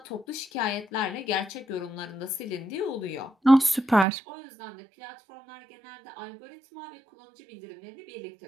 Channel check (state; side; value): drops out; left; at 4.0 s